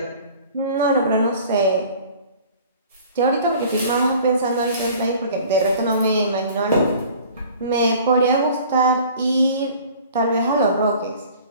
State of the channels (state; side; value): inverted; both; correlation -0.48